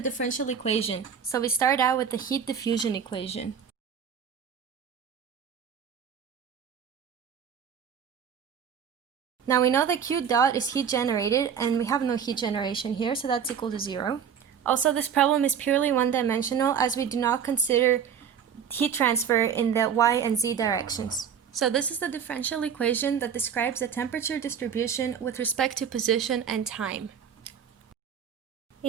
equation, so we start out with the heat diffusion equation. Now we know that Q dot is heat generated, and we have no heat generation here, so that's equal to 0. Also, this problem is purely one-dimensional, as we do not consider heat transfer in the y and z directions. So this is the differential equation that describes the temperature distribution with respect to position and time.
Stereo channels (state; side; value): quieter; left; 7.7 dB